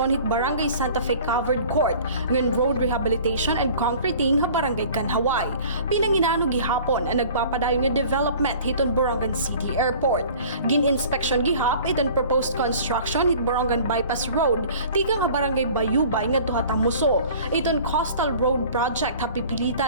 hit Barangay Santa Fe Covered Court ngan road rehabilitation and concreting ha Barangay Kanhaway. Pinanginano gihapon ang nagpapadayon nga development hiton Borongan City Airport. Gin-inspection gihap iton proposed construction hit Borongan Bypass Road tikang ha Barangay Bayubay nga tuha Tamuso. Iton Coastal Road Project ha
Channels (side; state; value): both; inverted; correlation -0.46